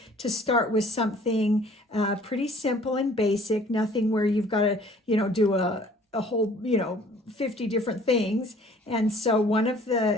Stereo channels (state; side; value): normal; both; correlation 0.54